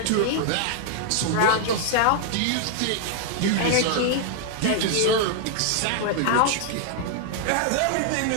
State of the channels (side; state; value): both; different; correlation 0.00